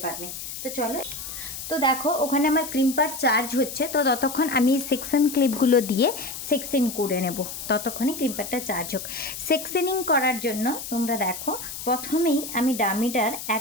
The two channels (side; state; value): left; noise; hiss, 8 dB below the sound